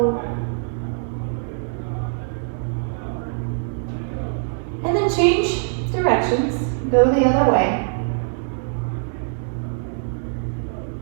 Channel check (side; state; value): left; silent; digital silence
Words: And then change directions. Go the other way.